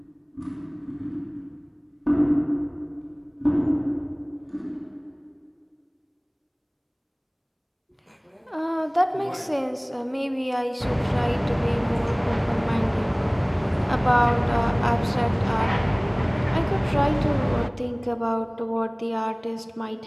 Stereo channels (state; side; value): identical; both; correlation 1.00